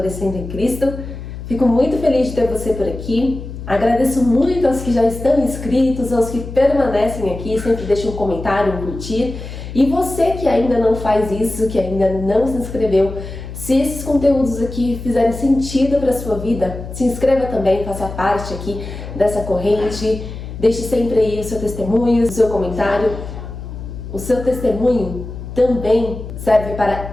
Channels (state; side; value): noise; left; hum, 10 dB below the sound